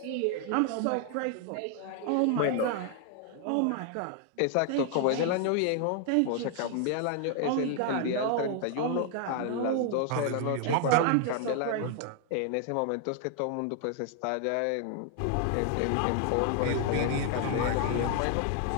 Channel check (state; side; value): different; both; correlation 0.00